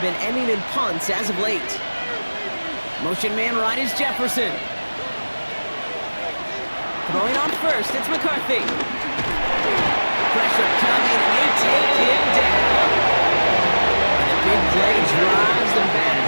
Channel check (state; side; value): inverted; both; correlation -1.00